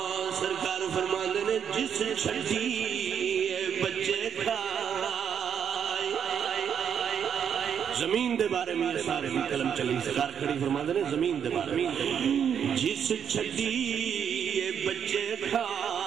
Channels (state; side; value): quieter; left; 8.0 dB